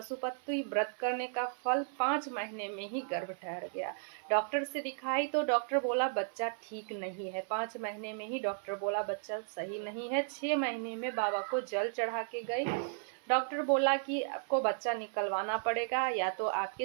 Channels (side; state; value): left; silent; 55 dB below the other